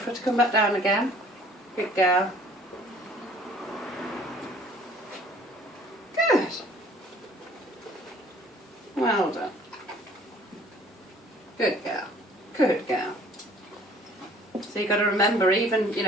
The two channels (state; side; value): normal; both; correlation 0.54